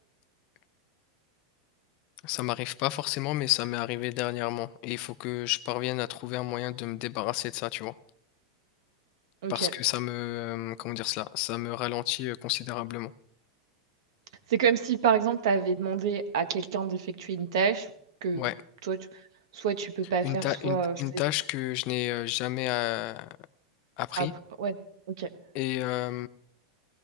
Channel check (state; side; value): normal; both; correlation -0.12